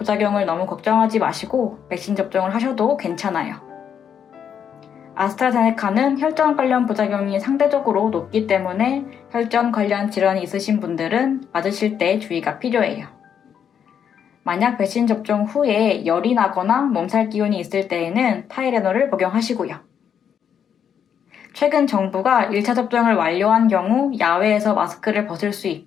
너무 걱정하지 마시고 백신 접종을 하셔도 괜찮아요. 아스트라제네카는 혈전 관련 부작용이 상대적으로 높기 때문에 혈전 관련 질환이 있으신 분들은 맞으실 때 주의가 필요해요. 만약 백신 접종 후에 열이 나거나 몸살 기운이 있을 때에는 타이레놀을 복용하시고요. 최근 정부가 1차 접종을 완료한 경우 야외에서 마스크를 벗을 수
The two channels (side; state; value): right; quieter; 8.2 dB